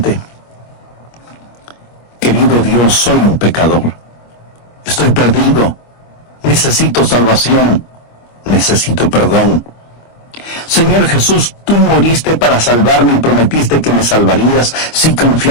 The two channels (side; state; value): right; late; 25 ms